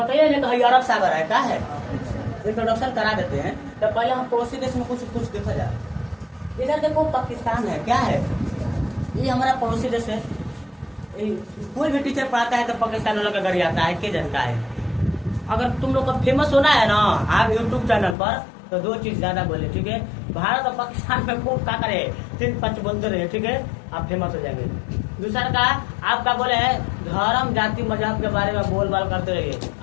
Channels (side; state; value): right; drops out; at 18.2 s